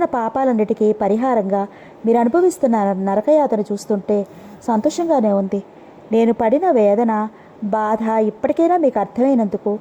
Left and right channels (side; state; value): both; identical; correlation 1.00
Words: పాపాలన్నిటికీ పరిహారంగా మీరు అనుభవిస్తున్న నరకయాతను చూస్తుంటే సంతోషంగానే ఉంది. నేను పడిన వేదన, బాధ ఇప్పటికైనా మీకు అర్థమైనందుకు